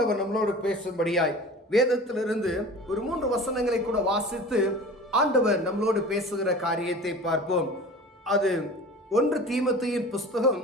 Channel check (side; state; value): both; normal; correlation 0.39